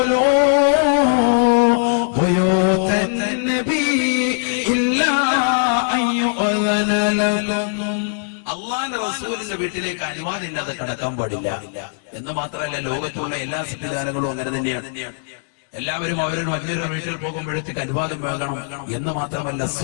بيوت النبي إلا أن يؤذن لكم അള്ളാന്റെ റസൂലിന്റെ വീട്ടിലേക്ക് അനുവാദം ഇല്ലാതെ കടക്കാൻ പാടില്ല എന്ന് മാത്രമല്ല ലോകത്തുള്ള എല്ലാ സംവിധാനങ്ങളും അങ്ങനെ തന്നെയാണ്. എല്ലാവരും അവരുടെ മറ്റൊരു വീട്ടിൽ പോകുമ്പോഴത്തേക്ക് അനുവാദം വാങ്ങണം എന്ന് മാത്രമല്ല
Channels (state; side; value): silent; right; digital silence